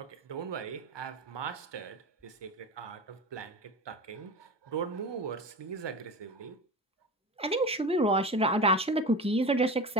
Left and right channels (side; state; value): both; normal; correlation 0.30